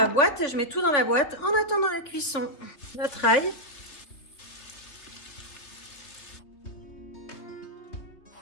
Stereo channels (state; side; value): late; right; 3.5 ms